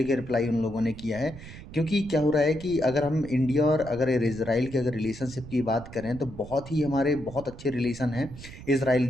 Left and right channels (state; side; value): noise; right; rumble, 15 dB below the sound